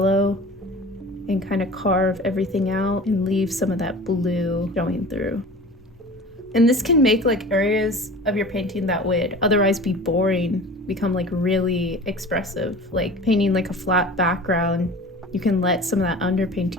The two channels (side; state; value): both; normal; correlation 0.39